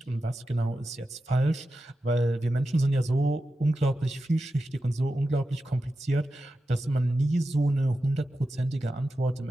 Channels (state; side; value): normal; both; correlation 0.91